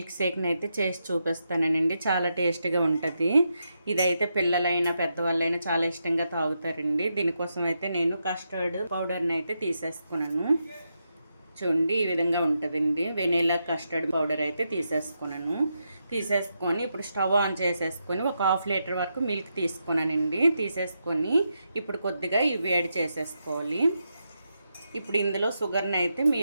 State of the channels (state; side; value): inverted; both; correlation -0.84